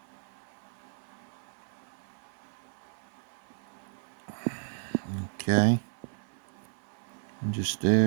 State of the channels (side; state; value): left; silent; 55 dB below the other